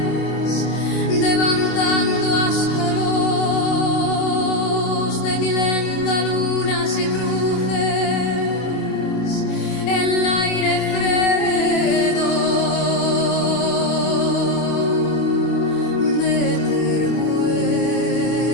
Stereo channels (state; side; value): late; right; 24 ms